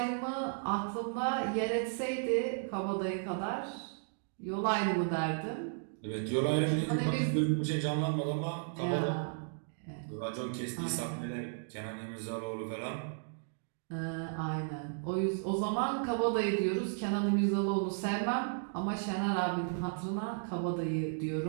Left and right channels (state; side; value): silent; left; digital silence